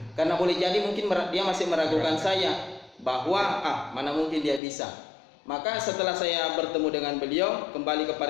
Karena boleh jadi mungkin dia masih meragukan saya bahwa mana mungkin dia bisa. Maka setelah saya bertemu dengan beliau, kembali ke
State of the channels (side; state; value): right; drops out; at 4.6 s